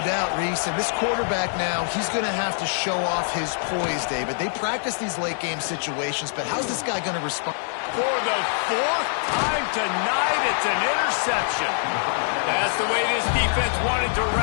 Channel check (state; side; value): silent; right; 62 dB below the other